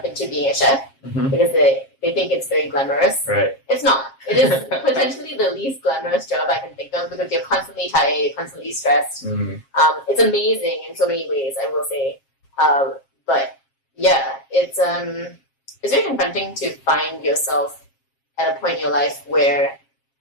into being a chef because they think it's very glamorous. Right. It's not. It is potentially the least glamorous job I can think of because you're constantly tired, you're constantly stressed. It's amazing in so many ways, I will say. But yeah, it's very confronting to find yourself at a point in your life where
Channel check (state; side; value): late; right; 7.4 ms